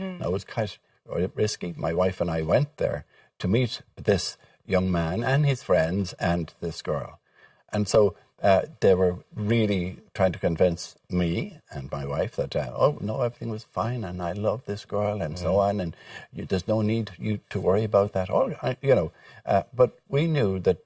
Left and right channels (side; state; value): both; identical; correlation 1.00